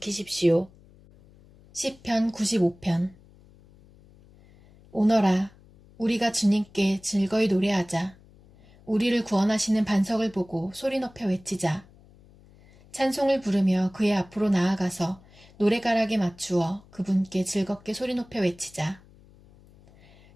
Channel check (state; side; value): noise; left; hum, 26 dB below the sound